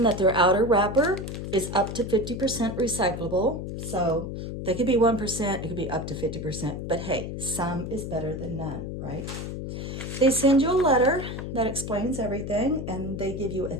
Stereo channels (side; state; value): left; noise; hum, 6 dB below the sound